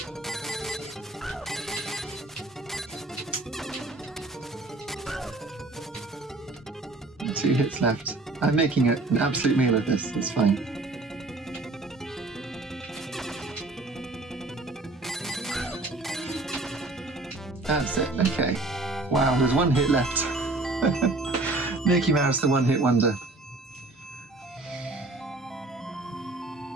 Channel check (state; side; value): quieter; left; 3.1 dB